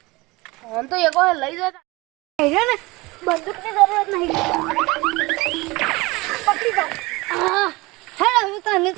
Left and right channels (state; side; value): quieter; left; 22.9 dB